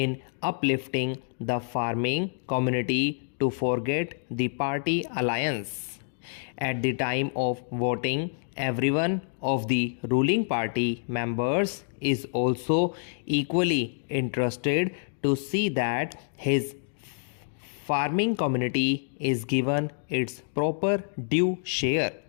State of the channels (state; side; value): silent; right; digital silence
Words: uplifting the farming community to forget the party alliance. At the time of voting, everyone of the ruling party members is also equally interested to see that his farming community is given its proper due share.